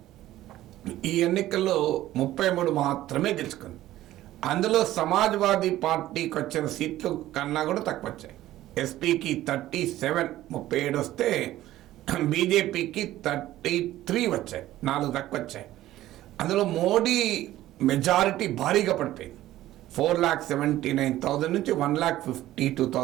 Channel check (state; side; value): quieter; left; 14.7 dB